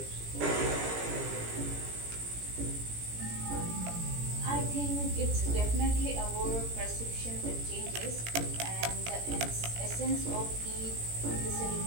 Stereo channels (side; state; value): left; late; 17 ms